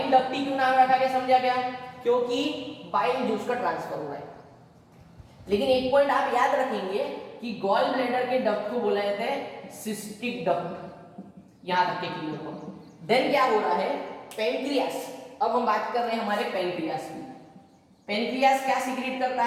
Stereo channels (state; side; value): identical; both; correlation 1.00